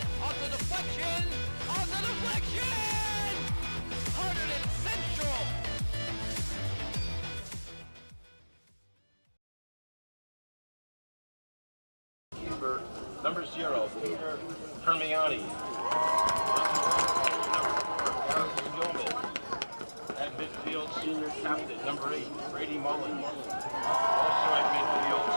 On the deflection. On the deflection. Hunterdon Central. Number 0, Peter Permiani. At midfield, senior captain, number 8, Brady Mullins. Also at midfield,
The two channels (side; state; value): both; inverted; correlation -1.00